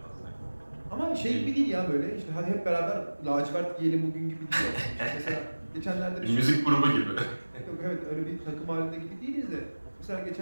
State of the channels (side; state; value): both; inverted; correlation -1.00